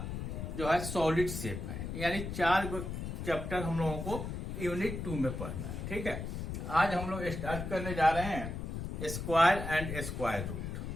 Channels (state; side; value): noise; left; rumble, 5 dB below the sound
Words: जो है सॉलिड शेप है। यानी 4 चैप्टर हम लोगों को यूनिट 2 में पढ़ना है। ठीक है, आज हम लोग स्टार्ट करने जा रहे हैं स्क्वायर एंड स्क्वायर रूट।